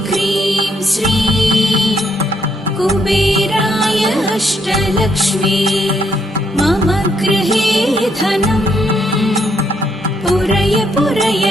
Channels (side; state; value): both; normal; correlation 0.73